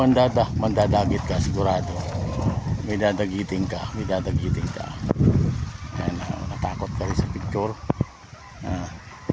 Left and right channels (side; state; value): both; identical; correlation 1.00